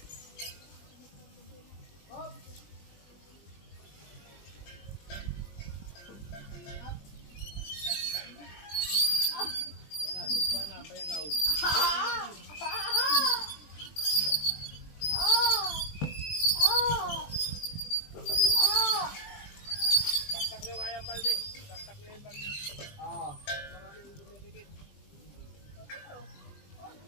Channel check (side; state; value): right; late; 20 ms